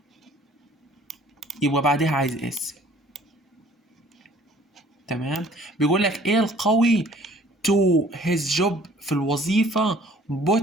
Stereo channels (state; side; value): normal; both; correlation 0.55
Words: يبقى بعدها عايز اس. تمام. بيقول لك ايه القوي to his job في الوظيفة